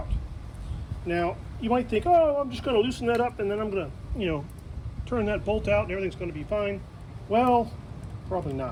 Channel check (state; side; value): identical; both; correlation 1.00